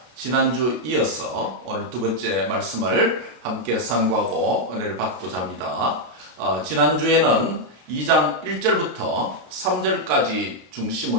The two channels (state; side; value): late; left; 33 ms